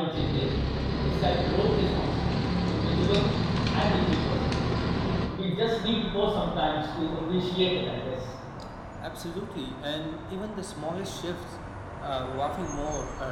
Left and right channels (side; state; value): both; identical; correlation 1.00